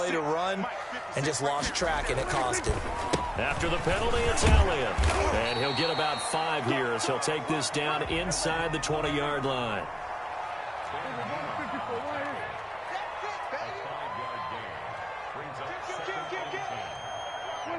to run and just lost track, and it cost him. After the penalty, it's Elliott. And he'll get about 5 here as he'll take this down inside the 20-yard line.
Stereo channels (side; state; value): both; identical; correlation 1.00